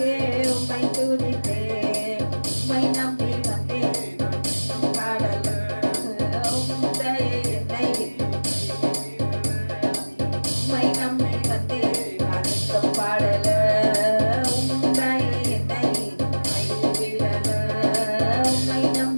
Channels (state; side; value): inverted; both; correlation -1.00